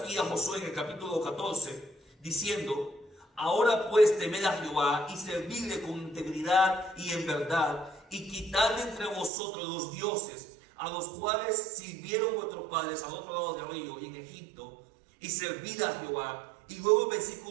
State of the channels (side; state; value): left; drops out; at 9.3 s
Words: a Josué en el capítulo 14 diciendo: ahora pues temed a Jehová y servidle con integridad y en verdad, y quitad de entre vosotros los dioses a los cuales sirvieron vuestros padres al otro lado del río y en Egipto, y servid a Jehová. Y luego el